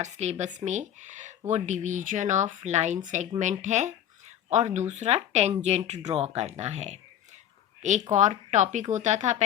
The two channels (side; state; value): right; quieter; 10.6 dB